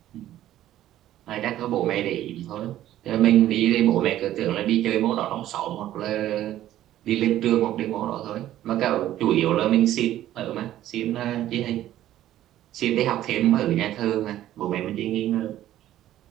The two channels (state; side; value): quieter; left; 13.1 dB